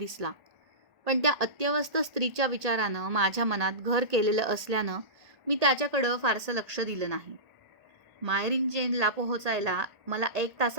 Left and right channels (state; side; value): late; left; 1.8 ms